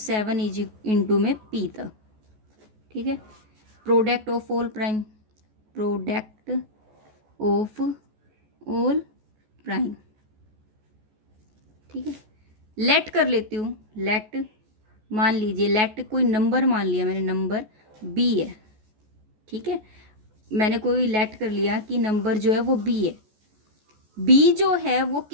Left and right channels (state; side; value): late; left; 14 ms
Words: is into में पी तक। ठीक है, product of all prime, product of all prime. ठीक है, लेट कर लेती हूँ, लेट मान लीजिए, लेट कोई नंबर मान लिया मैंने, नंबर बी है। ठीक है, मैंने कोई लेट कर लिया कि नंबर जो है वो बी है। बी जो है वो